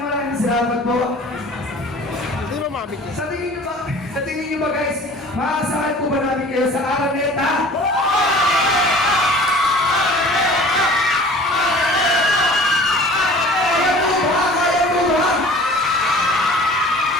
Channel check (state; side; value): normal; both; correlation 0.45